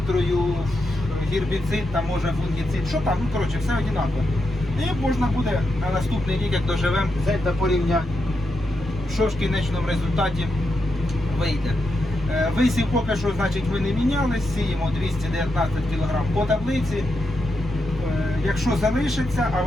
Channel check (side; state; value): both; normal; correlation 0.85